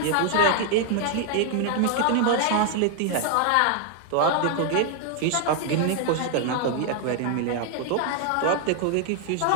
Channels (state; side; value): different; both; correlation 0.00